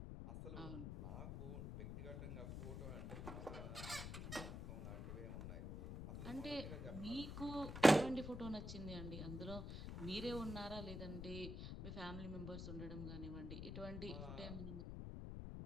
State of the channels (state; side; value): noise; left; rumble, 6 dB below the sound